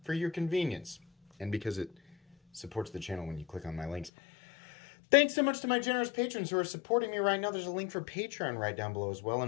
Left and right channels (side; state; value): right; drops out; at 4.1 s